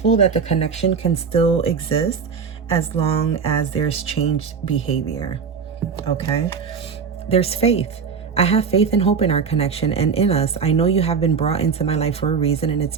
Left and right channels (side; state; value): left; quieter; 6.0 dB